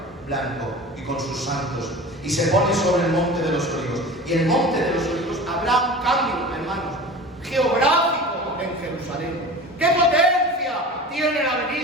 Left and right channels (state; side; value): normal; both; correlation 0.36